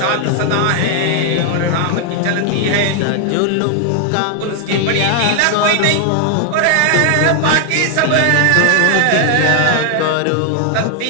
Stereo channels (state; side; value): different; both; correlation 0.00